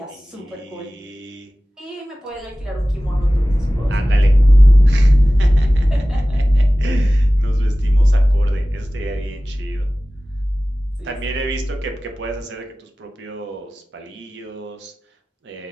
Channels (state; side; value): normal; both; correlation 0.97